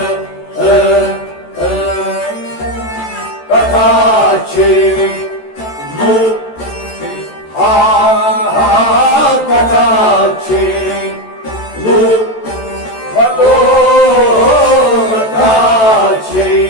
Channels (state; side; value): late; right; 14 ms